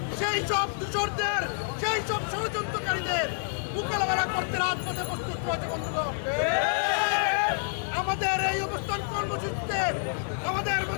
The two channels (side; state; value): right; silent; 56 dB below the other